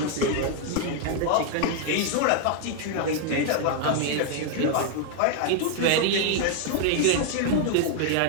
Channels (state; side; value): different; both; correlation 0.00